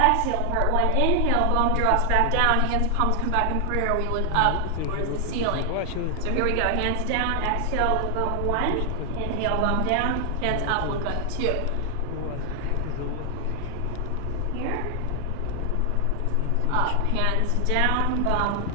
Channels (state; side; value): different; both; correlation 0.00